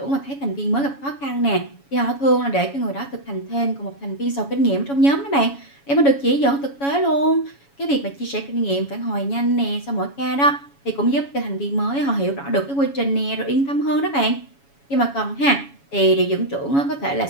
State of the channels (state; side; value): late; right; 7.2 ms